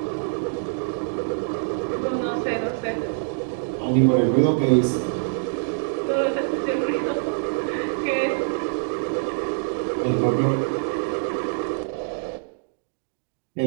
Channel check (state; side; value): silent; left; digital silence